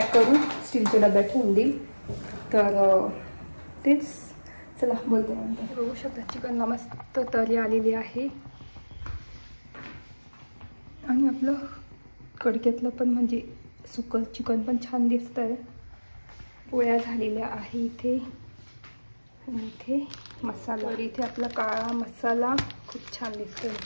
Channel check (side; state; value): both; inverted; correlation -1.00